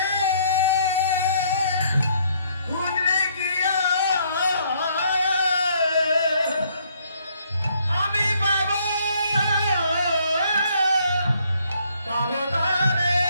খুঁজলে গিয়া আমি পাব পাব তারে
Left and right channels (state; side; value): inverted; both; correlation -0.67